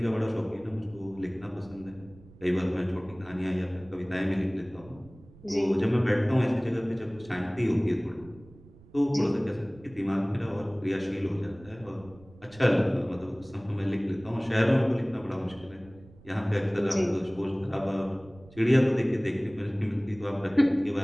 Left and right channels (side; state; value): right; noise; rumble, 22 dB below the sound